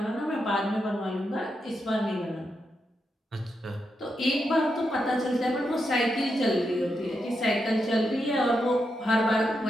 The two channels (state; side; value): normal; both; correlation 0.84